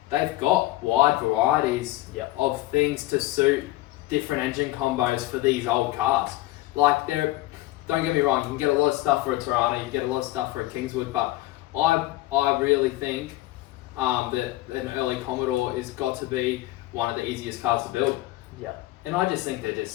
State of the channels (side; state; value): right; quieter; 17.4 dB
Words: they've got wide varieties of things to suit different engine combos for these old cars. Like, don't get me wrong, you can get a lot of stuff for a Tirana, you can get a lot of stuff for a Kingswood, but I really think that an early Commodore has got to be one of the easiest cars to build. Yeah. And I just think they're just